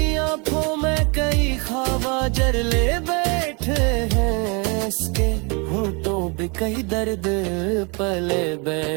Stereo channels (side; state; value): left; quieter; 32.1 dB